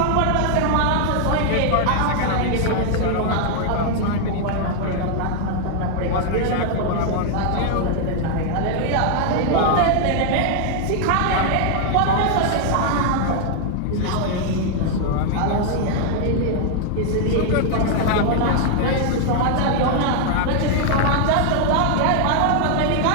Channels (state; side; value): different; both; correlation 0.00